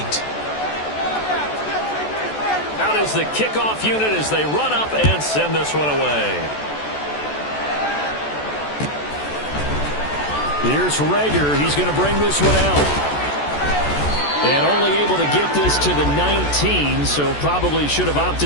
Out is the kickoff unit as they run up and send this one away. Here's Rager. He's going to bring this one out. And only able to get this to the 19, so probably should have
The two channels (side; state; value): right; late; 14 ms